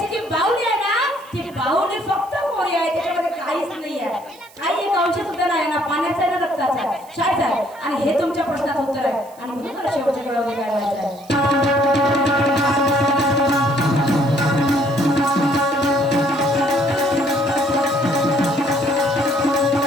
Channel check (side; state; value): right; noise; hiss, 25 dB below the sound